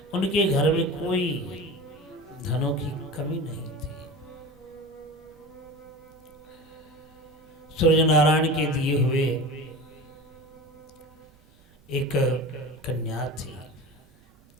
उनके घर में कोई धनों की कमी नहीं थी। सूर्य नारायण के दिए हुए एक कन्या थी।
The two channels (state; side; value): noise; right; rumble, 28 dB below the sound